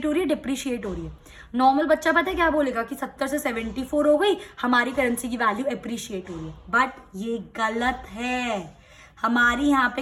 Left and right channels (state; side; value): identical; both; correlation 1.00